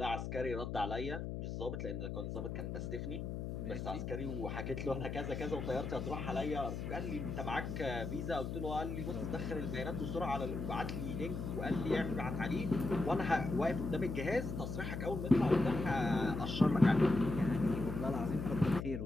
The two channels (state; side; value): noise; left; hum, 4 dB below the sound